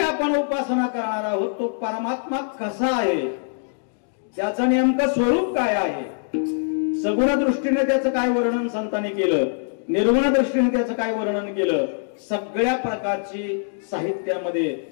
आपण उपासना करणार आहोत तो परमात्मा कसा आहे, त्याचं नेमकं स्वरूप काय आहे, सगुण दृष्टीने त्याचं काय वर्णन संतांनी केलं, निर्गुण दृष्टीने त्याचं काय वर्णन केलं, सगळ्या प्रकारची साहित्यामध्ये,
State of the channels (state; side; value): silent; right; digital silence